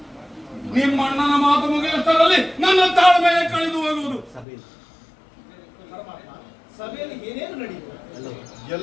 ನಿಮ್ಮ ಅಣ್ಣನ ಮಾತು ಮುಗಿಯುವುದರಲ್ಲಿ ನನ್ನ ತಾಳ್ಮೆಯೇ ಕಳೆದು ಹೋಗುವುದು. ಸಭೆಯಲ್ಲಿ ಏನೇನು ನಡೆಯಿತು?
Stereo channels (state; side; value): drops out; right; at 4.5 s